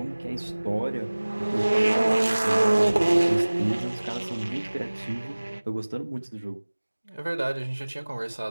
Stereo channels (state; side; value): inverted; both; correlation -1.00